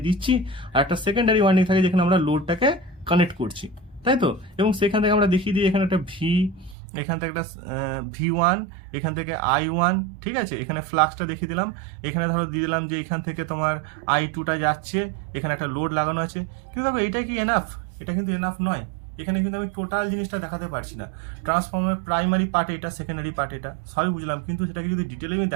দিচ্ছি, আর একটা সেকেন্ডারি ওয়াইন্ডিং থাকে যেখানে আমরা লোডটাকে কানেক্ট করছি, তাই তো? এবং সেখান থেকে আমরা দেখিয়ে দিই এখানে একটা ভি, এখান থেকে একটা V1, এখান থেকে I1, ঠিক আছে? এখানে ফ্লাক্সটা দেখিয়ে দিলাম। এখানে ধরো দিয়ে দিলাম যে এখান থেকে তোমার I2টা যাচ্ছে, এখানে একটা লোড লাগানো আছে। কিন্তু দেখো এটা কি এনাফ? এটা কিন্তু এনাফ নয়। এখানে কিন্তু আমি টোটাল জিনিসটা দেখাতে পারছি না। ট্রান্সফরমার প্রাইমারি পার্ট এটা, সেকেন্ডারি পার্ট এটা, সবই বুঝলাম, কিন্তু সেটাকে যদি ডিটেলে আমি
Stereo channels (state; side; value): drops out; left; at 6.8 s